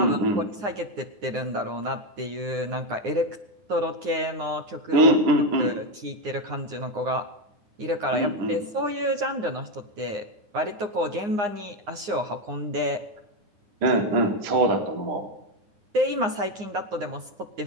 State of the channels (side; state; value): left; late; 9.6 ms